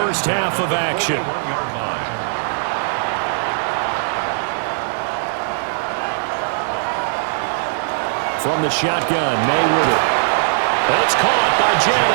half of action. From the shotgun, May with it. That's caught by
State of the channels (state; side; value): silent; left; digital silence